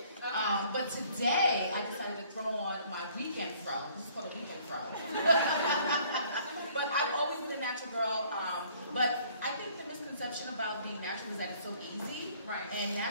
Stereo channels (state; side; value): inverted; both; correlation -0.59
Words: But today, I decided to throw on my weekend fro. This is called a weekend fro. But I've always been a natural girl. But I think the misconception about being natural is that it's so easy. Right. And